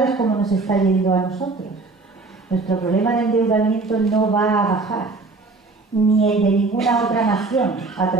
es cómo nos está yendo a nosotros. Nuestro problema de endeudamiento no va a bajar, ni el de ninguna otra nación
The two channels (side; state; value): left; quieter; 3.7 dB